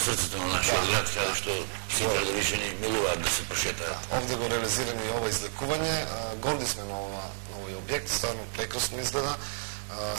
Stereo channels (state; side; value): silent; left; digital silence